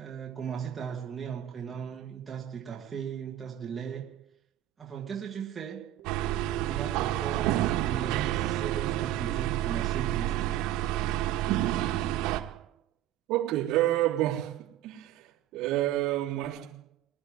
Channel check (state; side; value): quieter; left; 12.7 dB